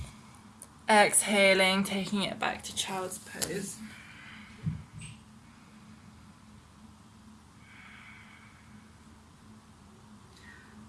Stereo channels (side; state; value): both; identical; correlation 1.00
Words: Exhaling, taking it back to child's pose.